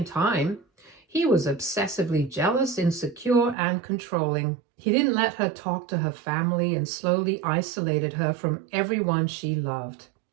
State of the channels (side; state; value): left; drops out; at 3.6 s